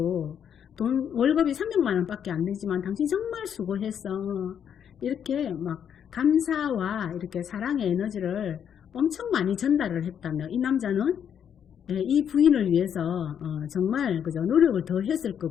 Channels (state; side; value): quieter; right; 8.5 dB